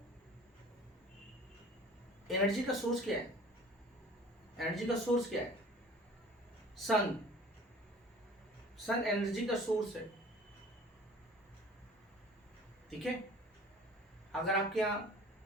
एनर्जी का सोर्स क्या है? एनर्जी का सोर्स क्या है? सन, सन एनर्जी का सोर्स है, ठीक है। अगर आपके यहाँ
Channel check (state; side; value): normal; both; correlation 0.47